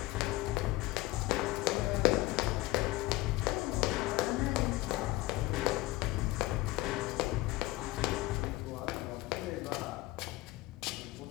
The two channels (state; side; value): quieter; right; 19.0 dB